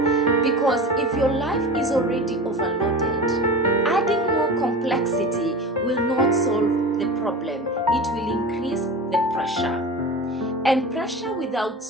because if your life is already overloaded, adding more complexity will not solve the problem. It will increase the pressure. And pressure without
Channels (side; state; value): both; normal; correlation 0.31